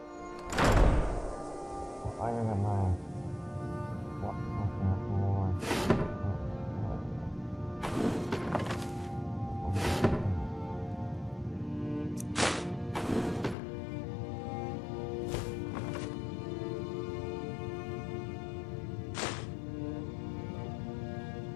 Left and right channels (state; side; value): drops out; right; at 13.6 s